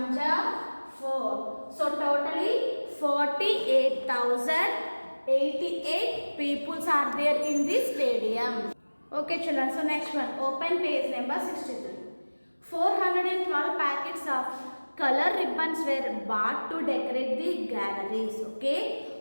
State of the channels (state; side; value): inverted; both; correlation -1.00